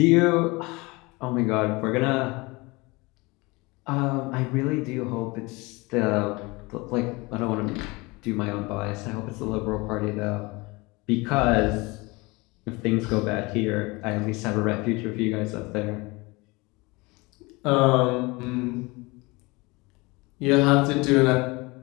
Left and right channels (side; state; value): right; quieter; 24.6 dB